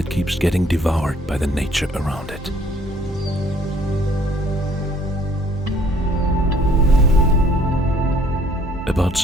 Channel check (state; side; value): normal; both; correlation 0.60